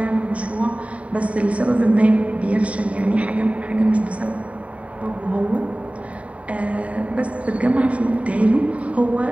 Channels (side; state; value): left; late; 0.066 ms